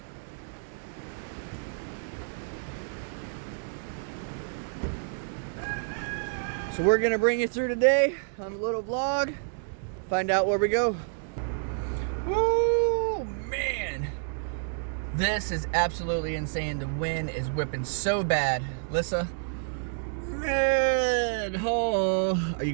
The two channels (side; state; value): left; silent; digital silence